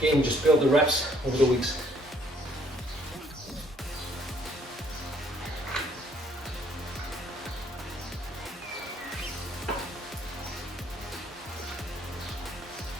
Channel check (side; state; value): both; normal; correlation 0.64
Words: just build the reps over the weeks.